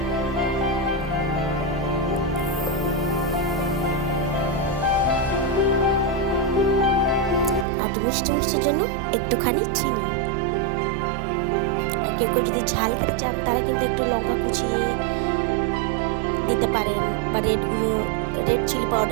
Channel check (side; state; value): left; drops out; at 7.7 s